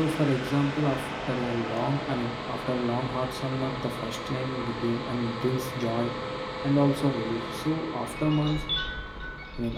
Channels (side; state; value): both; identical; correlation 1.00